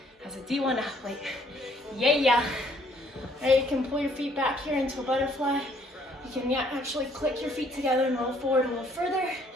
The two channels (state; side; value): normal; both; correlation 0.64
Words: as a D1 athlete. Yeah. All right, you can pull your feet back here into a butterfly. You can actually click your feet together and roll forward a little further.